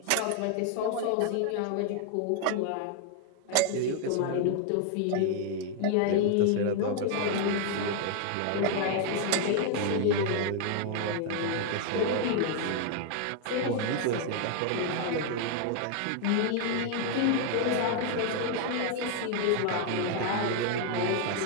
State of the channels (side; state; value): both; different; correlation 0.00